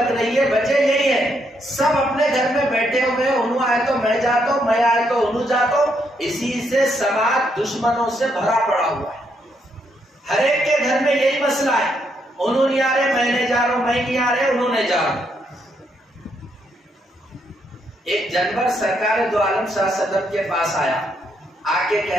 رہی ہے وجہ یہی ہے، سب اپنے گھر میں بیٹھے ہوئے، انہوں آئے تو میں جاتا ہوں، میں آئے تو انہوں جاتا ہوں، اسی سے سماج دشمنوں سے بھرا پڑا ہوا ہے۔ ہر ایک کے گھر میں یہی مسئلہ ہے، انہوں نہیں آ رہے میں نہیں جا رہا ہوں، میں نہیں آ رہے انہوں نہیں جا رہا۔ ایک جانور سرکار دو عالم صلی اللہ علیہ وسلم کے پاس آیا، آ کے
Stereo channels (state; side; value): normal; both; correlation 0.76